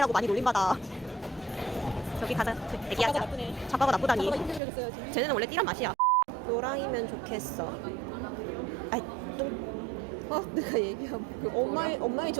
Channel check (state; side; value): drops out; left; at 4.6 s